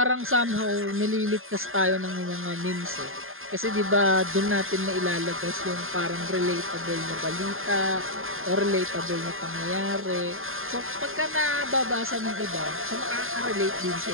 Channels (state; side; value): late; left; 0.60 ms